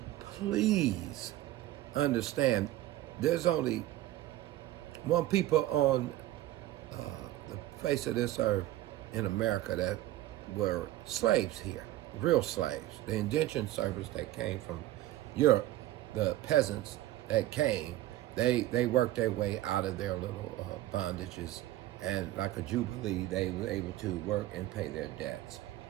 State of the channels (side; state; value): left; quieter; 14.9 dB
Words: please understand there's only one people on the face of this earth in America that were slaves here, real slaves. The indentured servants that came from Europe, the peasants that came, they worked their way out of their little bondages, and like a jubilee, they were able to work and pay their debts.